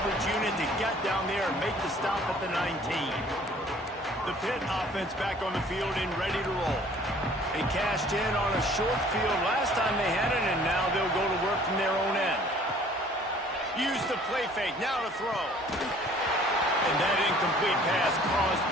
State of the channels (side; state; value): both; normal; correlation 0.54